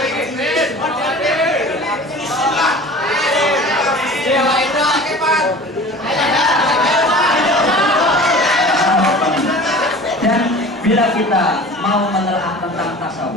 bila kita mau menelaah tentang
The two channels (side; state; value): both; normal; correlation 0.40